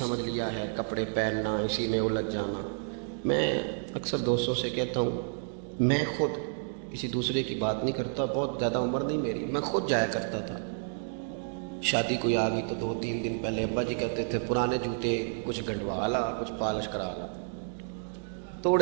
لیا ہے, کپڑے پہننا, اسی میں الجھ جانا. میں اکثر دوستوں سے کہتا ہوں, میں خود کسی دوسرے کی بات نہیں کرتا, بہت زیادہ عمر نہیں میری, میں خود جایا کرتا تھا. شادی کوئی آ گئی تو 2-3 دن پہلے ابا جی کہتے تھے پرانے جوتے کچھ گنڈوا لا, کچھ پالش کرا لا,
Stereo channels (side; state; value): left; silent; digital silence